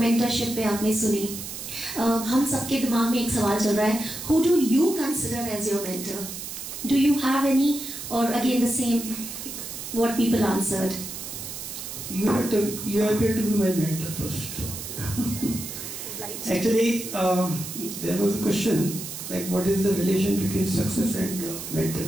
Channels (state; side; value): noise; right; hiss, 8 dB below the sound